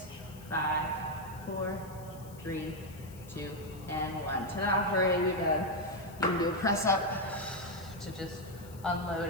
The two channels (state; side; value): noise; left; hiss, 21 dB below the sound